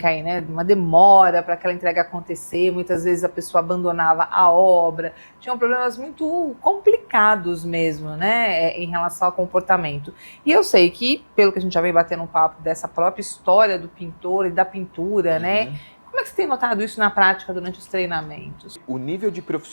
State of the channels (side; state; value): both; inverted; correlation -1.00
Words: aí, né? Uma demora para aquela entrega acontecer, muitas vezes a pessoa abandonava a obra, tinham problemas muito complicados mesmo, né? Em relação ao comportamento. E eu sei que, pelo que a gente já vem batendo um papo dessa própria história do pintor e da pintura, né? Como é que você tem notado isso na prática durante os treinamentos? O nível de